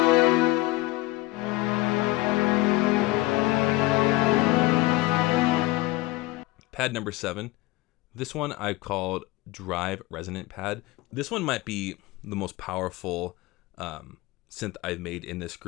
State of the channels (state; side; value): quieter; right; 19.8 dB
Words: Pad number 7. This one I called Drive Resonant Pad. This one might be the most powerful synth I've made in this